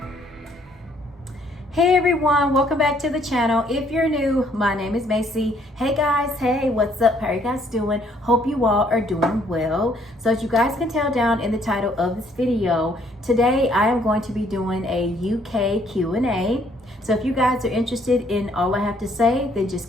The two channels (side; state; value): both; normal; correlation 0.65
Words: Hey everyone, welcome back to the channel. If you're new, my name is Macy. Hey guys, hey, what's up? How are you guys doing? Hope you all are doing well. So as you guys can tell down in the title of this video, today I am going to be doing a UK Q&A. So if you guys are interested in all I have to say, then just